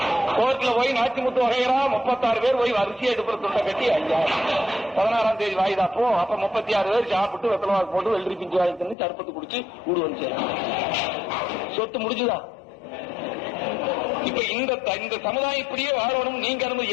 கோர்ட்ல போய் நாச்சிமுத்து வகைரா 36 பேர் போய் வரிசையா எடுப்புற துண்டை கட்டி ஐயா 16ஆம் தேதி வாய்தாப்போ. அப்ப 36 பேர் சாப்பிட்டு வெத்தலவாக்கு போட்டு வெள்ளரி பிஞ்சு வாங்கி தந்து சர்பத்து குடிச்சு ஊடு வந்து சொத்து முடிஞ்சுதான். இப்ப இந்த சமுதாயம் இப்படியே வாழணும். நீங்க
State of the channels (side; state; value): right; drops out; at 9.0 s